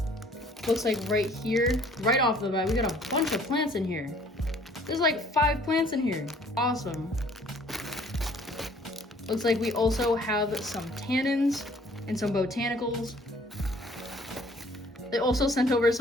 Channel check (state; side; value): normal; both; correlation 0.57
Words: Looks like right here, right off the bat, we got a bunch of plants in here. There's like 5 plants in here. Awesome. Looks like we also have some tannins and some botanicals. They also sent over